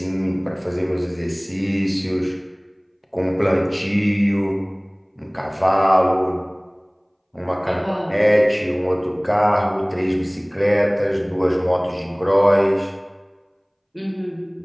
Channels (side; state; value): both; identical; correlation 1.00